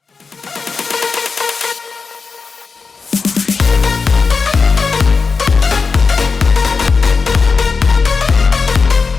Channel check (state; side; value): quieter; right; 4.8 dB